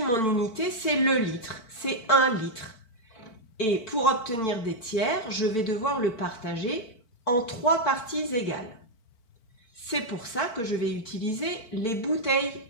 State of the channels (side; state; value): right; late; 4.5 ms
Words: mon unité, c'est le litre, c'est 1 litre. Et pour obtenir des tiers, je vais devoir le partager en 3 parties égales. C'est pour ça que je vais utiliser les bouteilles